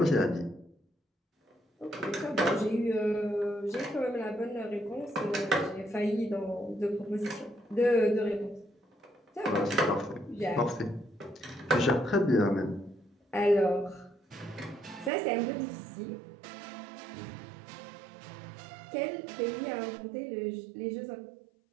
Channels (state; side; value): drops out; left; at 15.1 s